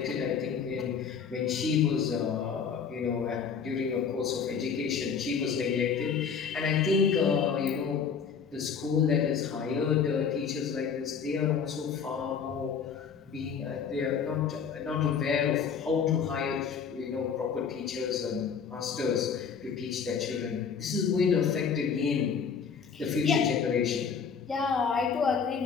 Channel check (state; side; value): quieter; right; 6.5 dB